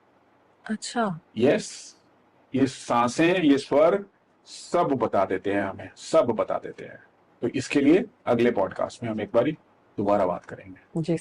अच्छा। यस, ये सांसें, ये स्वर सब बता देते हैं हमें, सब बता देते हैं। तो इसके लिए अगले पॉडकास्ट में हम एक बारी दोबारा बात करेंगे। जी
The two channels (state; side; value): identical; both; correlation 1.00